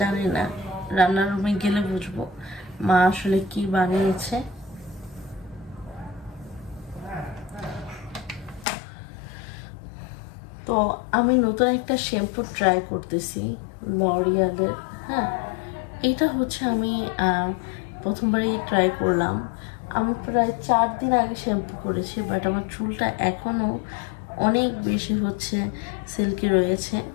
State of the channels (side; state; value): right; drops out; at 8.7 s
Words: জানি না, রান্নার রুমে গেলে বুঝবো মা আসলে কি বানিয়েছে। তো আমি নতুন একটা শ্যাম্পু ট্রাই করতেছি, লরিয়ালের। হ্যাঁ, এটা হচ্ছে আমি প্রথমবারই ট্রাই করলাম। আমি প্রায় 4 দিন আগে শ্যাম্পু করেছি, বাট আমার চুলটা এখনও অনেক বেশি হচ্ছে সিল্কি রয়েছে।